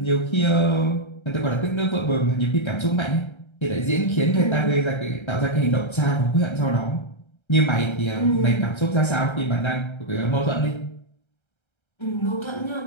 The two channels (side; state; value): right; late; 1.3 ms